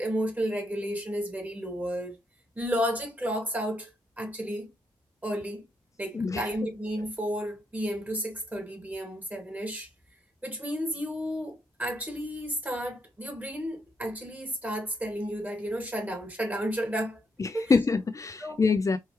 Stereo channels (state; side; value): normal; both; correlation 0.79